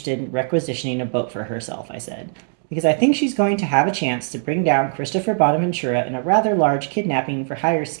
in requisitioning a boat for herself," I said, "because I think she's going to have a chance to bring down Christopher Bonaventura in a rather large kidnapping for hire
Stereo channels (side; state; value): left; silent; digital silence